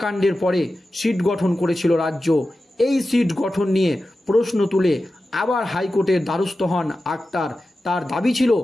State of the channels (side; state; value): both; normal; correlation 0.93